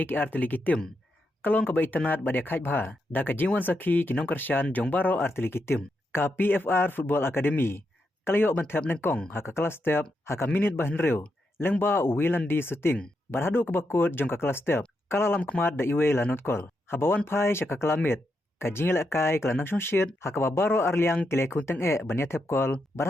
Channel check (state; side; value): normal; both; correlation 0.83